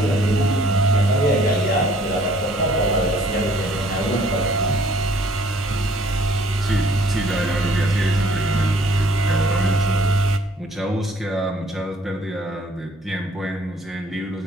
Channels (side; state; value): both; normal; correlation 0.59